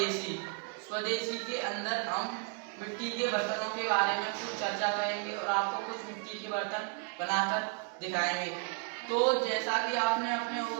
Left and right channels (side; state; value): left; quieter; 35.2 dB